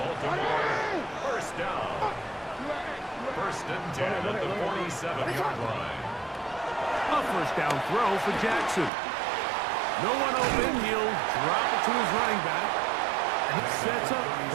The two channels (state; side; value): drops out; left; at 8.9 s